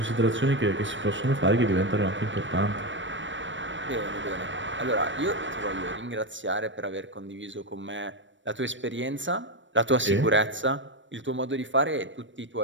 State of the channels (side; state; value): left; late; 0.55 ms